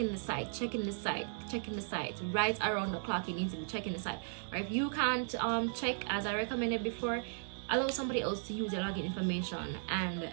the site right around the clock. You need to be checking the site, or if you can't check, as I recommended before, allow somebody else to use your login information, and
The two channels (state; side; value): silent; left; digital silence